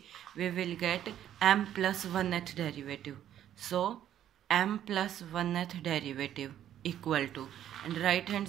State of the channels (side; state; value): left; quieter; 11.0 dB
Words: we will get m plus 1th derivative. So m plus 1th derivative equal to, and right hand